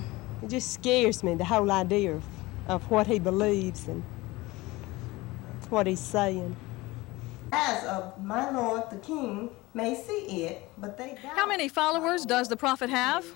It just scares me, the whole idea of what he believes and what he's saying. As of my Lord the King may see it, but they don't. How many followers does the prophet have?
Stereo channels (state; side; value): quieter; right; 20.8 dB